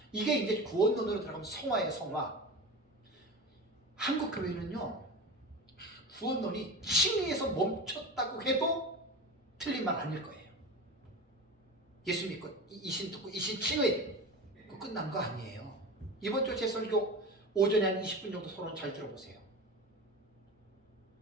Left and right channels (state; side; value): normal; both; correlation 0.29